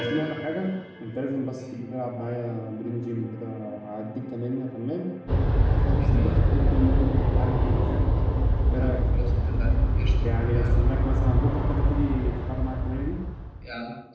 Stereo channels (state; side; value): identical; both; correlation 1.00